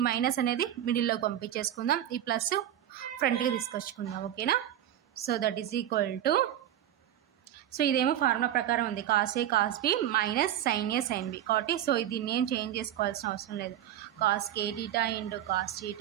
మైనస్ అనేది మిడిల్లోకి పంపించేసుకుందాం. ఈ ప్లస్ ఫ్రంట్కి తీసుకొచ్చుకుందాం. ఓకేనా. So that is equal to so ఇదేమో ఫార్ములా ప్రకారం ఉంది కాస్ ఏ కాస్ బి మైనస్ సైన్ ఏ సైన్ బి కాబట్టి సో దీన్ని ఏం చేంజ్ చేసుకోవాల్సిన అవసరం లేదు. Cos K theta into cos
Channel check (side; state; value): left; quieter; 11.6 dB